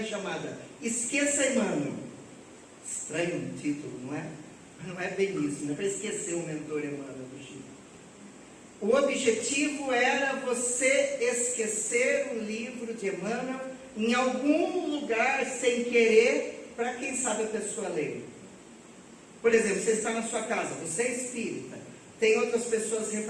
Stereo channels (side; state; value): both; identical; correlation 1.00